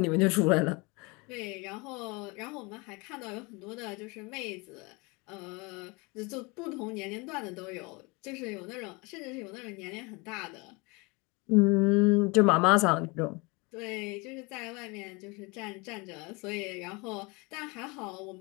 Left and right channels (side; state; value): right; quieter; 27.4 dB